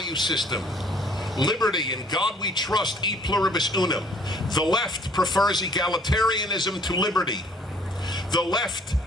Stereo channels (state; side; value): normal; both; correlation 0.59